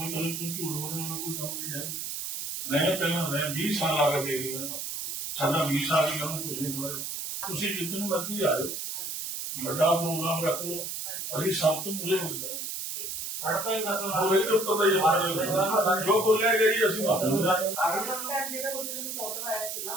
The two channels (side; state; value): right; noise; hiss, 5 dB below the sound